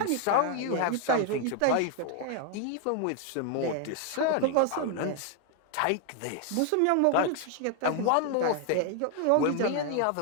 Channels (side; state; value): both; different; correlation 0.00